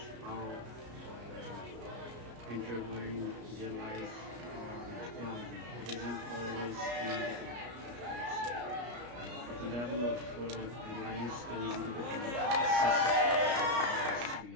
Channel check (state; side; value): late; left; 33 ms